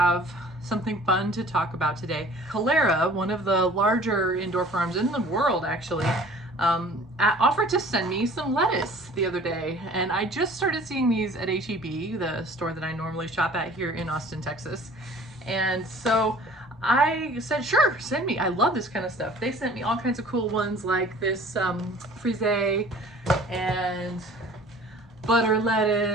something fun to talk about today. Kalera, one of the larger indoor farms in the world, actually, offered to send me some lettuce the other day, and I just started seeing these at HEB, the store that I normally shop at here in Austin, Texas. And so I said, sure, send me. I love this kind of stuff. They sent me all kinds of cool ones like this Frisee and butter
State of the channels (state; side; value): normal; both; correlation 0.49